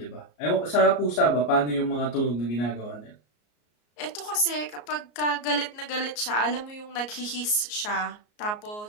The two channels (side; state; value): right; late; 33 ms